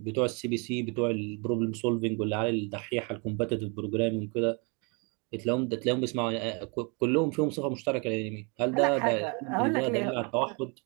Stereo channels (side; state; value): left; quieter; 32.8 dB